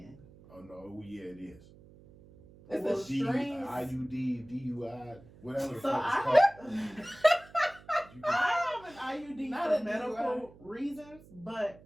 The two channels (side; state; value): right; noise; hum, 22 dB below the sound